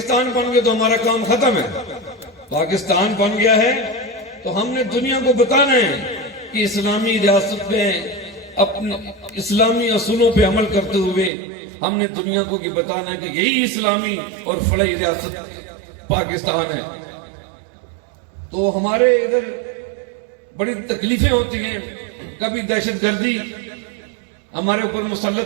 بن گیا تو ہمارا کام ختم ہے. پاکستان بن گیا ہے تو ہم نے دنیا کو بتانا ہے کہ اسلامی ریاست میں اپنے اسلامی اصولوں پہ عمل کرتے ہوئے ہم نے دنیا کو بتانا ہے کہ یہی اسلامی اور فلاحی ریاست پاکستان ہے. تو ہمارے ادھر بڑی تکلیفیں ہوتی ہیں. کبھی دہشت گردی ہمارے اوپر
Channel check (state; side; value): drops out; left; at 11.3 s